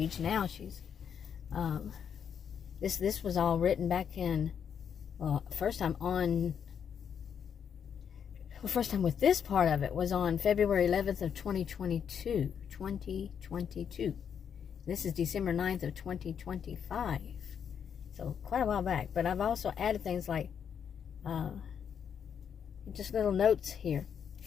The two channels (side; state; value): right; quieter; 7.8 dB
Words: Now she's, this was all written back in, well, first time with this part of it was on February 11th of 2022. 2022. This is December 9th of 2025. So quite a while back. But I've also added things like just little notes here.